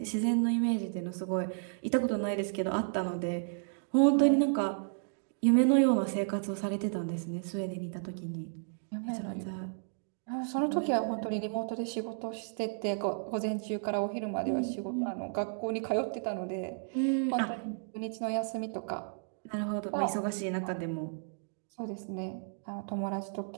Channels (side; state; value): left; silent; digital silence